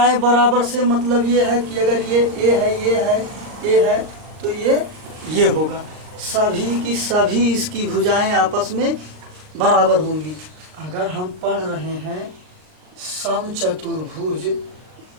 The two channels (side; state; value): left; late; 38 ms